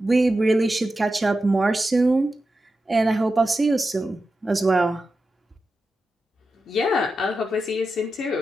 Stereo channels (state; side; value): normal; both; correlation 0.91